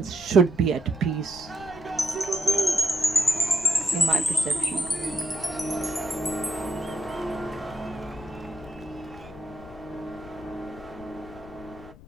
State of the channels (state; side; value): noise; left; rumble, 19 dB below the sound